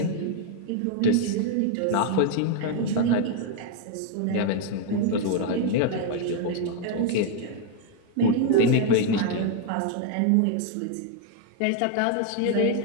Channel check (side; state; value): both; different; correlation 0.00